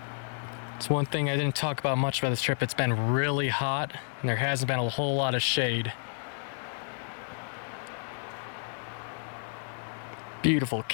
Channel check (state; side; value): silent; right; digital silence